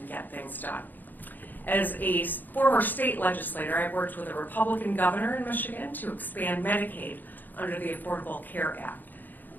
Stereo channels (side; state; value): right; late; 0.087 ms